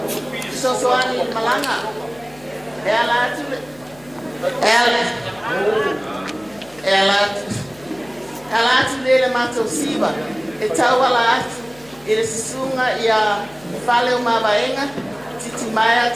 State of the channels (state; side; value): noise; left; hum, 25 dB below the sound